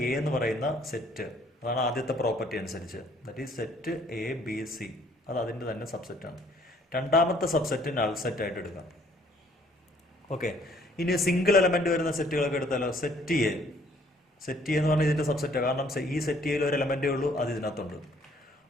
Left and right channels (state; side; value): normal; both; correlation 0.61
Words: എ എന്ന് പറയുന്ന സെറ്റ്, അതാണ് ആദ്യത്തെ പ്രോപ്പർട്ടി അനുസരിച്ച്. That is set A B C, അത് അതിൻ്റെ തന്നെ സബ്സെറ്റാണ്. രണ്ടാമത്തെ സബ്സെറ്റ് നൾ സെറ്റ് ആയിട്ട് എടുക്കാം. ഓക്കെ, ഇനി സിംഗിൾ എലമെന്റ് വരുന്ന സെറ്റുകളൊക്കെ എടുത്താലോ? സെറ്റ് എ എന്ന് പറഞ്ഞാൽ ഇതിൻ്റെ സബ്സെറ്റാണ്. കാരണം ഈ സെറ്റ് എയിൽ ഒരു എലമെന്റേ ഉള്ളൂ, അത് ഇതിനകത്തുണ്ട്.